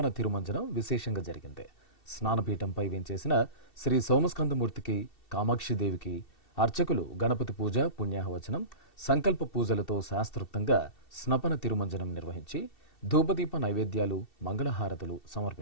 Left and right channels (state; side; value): late; right; 2.7 ms